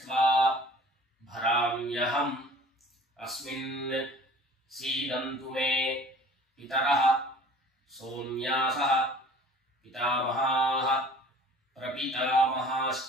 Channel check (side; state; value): both; normal; correlation 0.48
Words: பராம்யஹம் அஸ்மின் சீதந்து மே பிதரஹ சௌம்யாஸஹ பிதாமஹாः